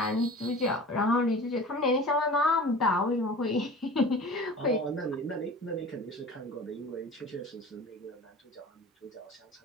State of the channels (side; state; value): both; normal; correlation 0.39